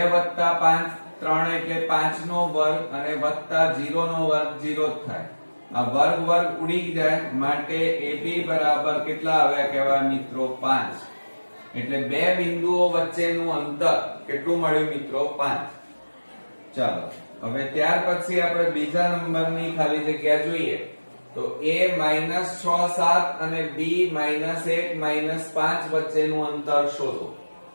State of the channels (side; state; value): both; inverted; correlation -1.00